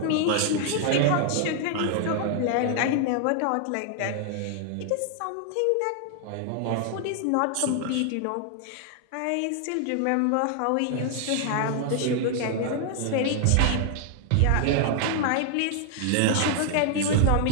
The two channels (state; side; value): different; both; correlation 0.00